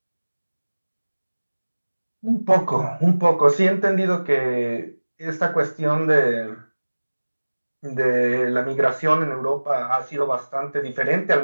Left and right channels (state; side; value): inverted; both; correlation -1.00